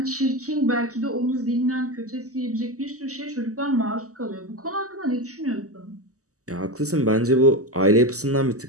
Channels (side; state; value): left; late; 0.66 ms